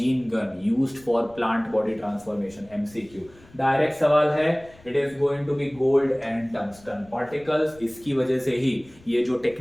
gun used for plant body transformation, MCQ। Direct सवाल है, it is going to be gold and tungsten particles. इसकी वजह से ही ये जो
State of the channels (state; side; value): noise; left; rumble, 25 dB below the sound